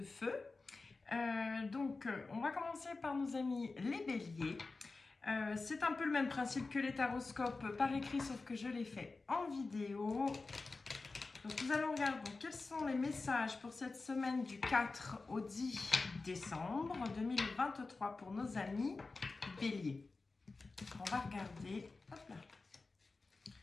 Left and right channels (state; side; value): quieter; right; 3.8 dB